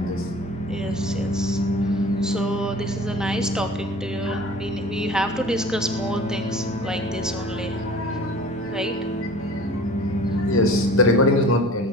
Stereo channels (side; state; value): both; normal; correlation 0.44